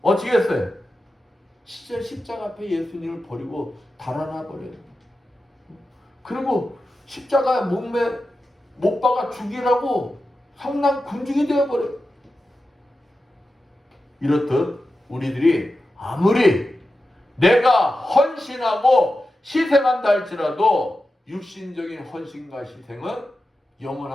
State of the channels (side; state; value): both; normal; correlation 0.91